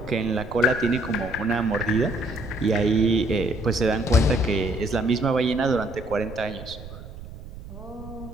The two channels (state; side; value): noise; right; rumble, 14 dB below the sound